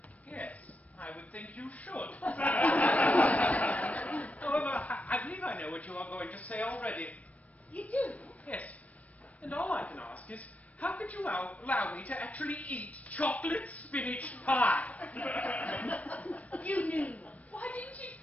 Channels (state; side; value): late; right; 0.068 ms